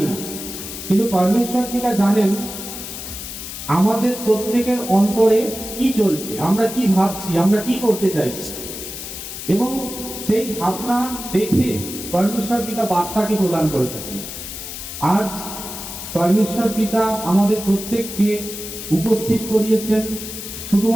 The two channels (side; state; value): left; noise; hiss, 9 dB below the sound